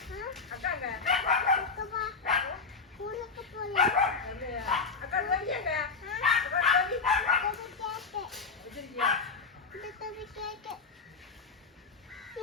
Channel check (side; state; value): right; quieter; 4.8 dB